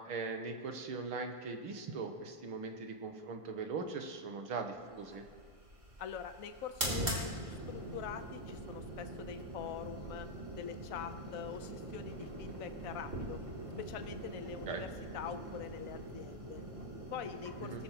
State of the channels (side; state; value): left; late; 1.5 ms